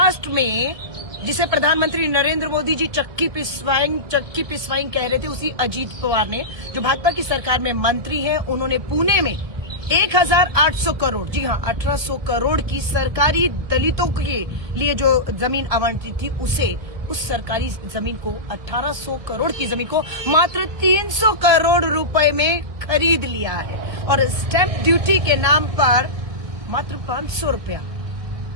में जिसे प्रधानमंत्री नरेंद्र मोदी जी चक्की पिसवाइंग कह रहे थे, उसी अजीत पवार ने, जो भाजपा की सरकार में मंत्री हैं, उन्होंने पुणे में 1800 करोड़, जी हाँ 1800 करोड़ की सरकारी दलितों के लिए जो जमीन आवंटित थी, उस सरकारी जमीन को 1800 करोड़ की जमीन को मात्र 300 करोड़ रुपए में खरीद लिया है और स्टैंप ड्यूटी के नाम पर मात्र 500 रुपया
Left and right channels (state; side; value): late; left; 1.8 ms